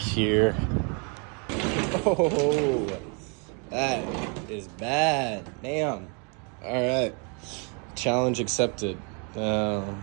Oh, that is bad. Damn. All right. Challenge accepted.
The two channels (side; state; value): left; quieter; 36.1 dB